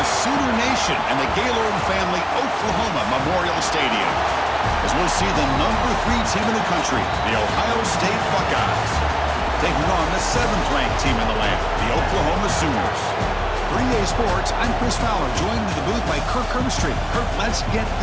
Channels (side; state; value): both; identical; correlation 1.00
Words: the Sooner Nation and the Gaylord Family Oklahoma Memorial Stadium, as we'll see the #3 team in the country, the Ohio State Buckeyes, taking on the 7th-ranked team in the land, the Oklahoma Sooners. 3A Sports, I'm Chris Fowler, joined in the booth by Kirk Herbstreit. Kirk, let's get